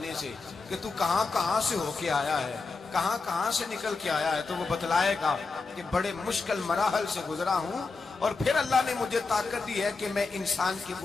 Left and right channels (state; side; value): quieter; right; 4.2 dB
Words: سے کہ تو کہاں سے ہو کے آیا ہے, کہاں سے نکل کے آیا ہے, تو وہ بتلائے گا کہ بڑے مشکل مراحل سے گزرا ہوں, اور پھر اللہ نے مجھے طاقت دی ہے کہ میں انسان کے